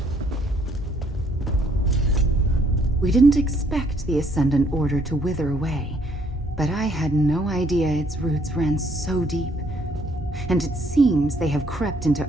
We didn't expect the Ascendant Order to wither away, but I had no idea its roots ran so deep. And it seems they have crept into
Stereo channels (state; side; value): normal; both; correlation 0.66